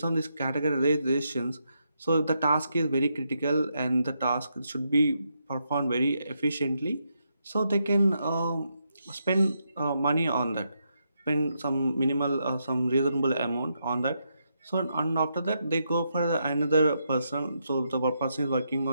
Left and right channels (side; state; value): both; inverted; correlation -0.81